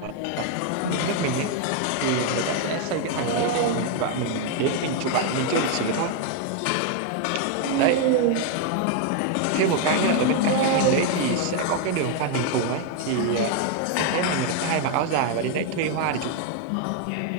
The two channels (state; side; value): different; both; correlation 0.01